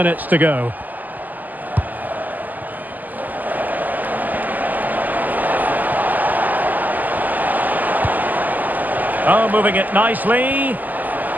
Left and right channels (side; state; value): left; late; 0.083 ms